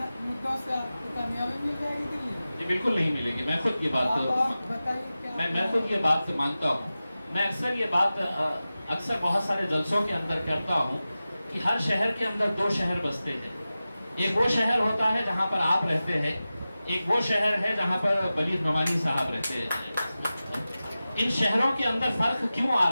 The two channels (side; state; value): both; inverted; correlation -0.95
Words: से आपको कामयाबी मिल जाएगी दिल्ली में? ये बिल्कुल नहीं मिलेगी। मैं खुद ये बात बताइए। मैं खुद ये बात मानता हूँ। मैं अक्सर ये बात अक्सर बहुत सारे जलसों के अंदर करता हूँ कि हर शहर के अंदर 2 शहर बसते हैं। एक वो शहर होता है जहाँ पर आप रहते हैं, एक वो शहर है जहाँ पर बलीग नोमानी साहब रहते हैं। इन शहरों के अंदर फर्क क्यों आ